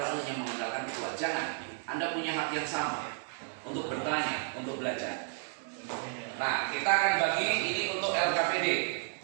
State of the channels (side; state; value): left; silent; 56 dB below the other